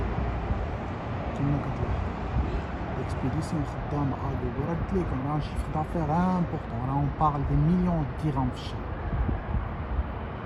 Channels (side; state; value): both; identical; correlation 1.00